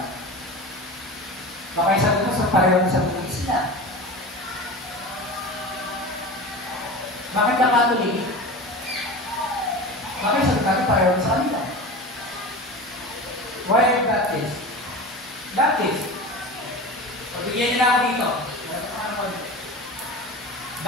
Baka yung sagot ko sa pareho ng sagot ng Islam. Bakit ka Catholic? Baka yung sagot natin pareho sa kanila. Why are you Baptist? Baptist. Pagbigyan nila ako dito.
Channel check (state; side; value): normal; both; correlation 0.31